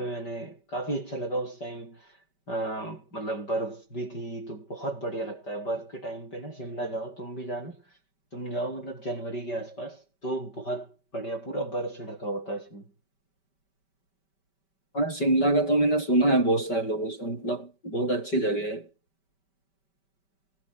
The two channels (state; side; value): late; right; 5.2 ms